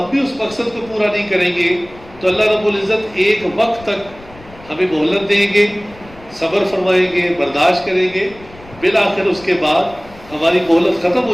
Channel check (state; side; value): noise; left; rumble, 22 dB below the sound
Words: بھی اس مقصد کو پورا نہیں کریں گے تو اللہ رب العزت ایک وقت تک ہمیں مہلت دیں گے، صبر فرمائیں گے، برداشت کریں گے، بالآخر اس کے بعد ہماری مہلت ختم